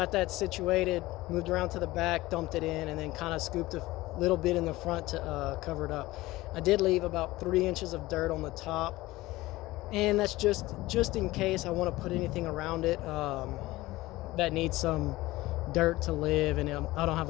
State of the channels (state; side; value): quieter; right; 18.6 dB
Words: that situated, moved around to the back, dumped it in, and then kind of scooped a little bit in the front to cover it up. I did leave about 3 inches of dirt on the top, and that's just in case I want to put anything around it that needs some dirt to live, and I don't have